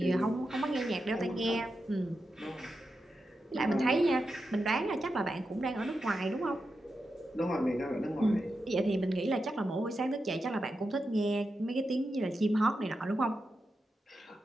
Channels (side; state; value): both; normal; correlation 0.89